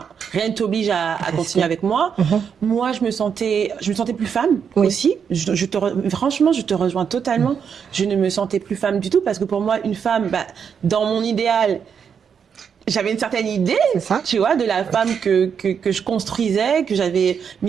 t'oblige à continuer avec moi. Moi, je me sentais plus femme aussi. Franchement, je te rejoins totalement. Je ne me sentais plus femme du tout parce que pour moi, une femme, dans mon idéal, j'avais une certaine idée, tu vois, de la femme que je construisais, que j'avais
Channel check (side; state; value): left; quieter; 7.1 dB